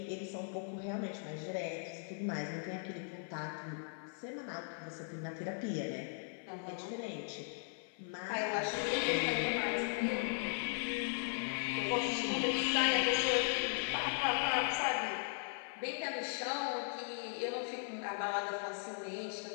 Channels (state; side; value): silent; right; 52 dB below the other